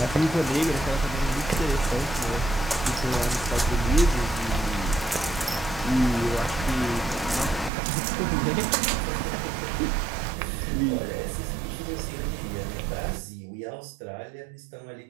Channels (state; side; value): drops out; left; at 7.7 s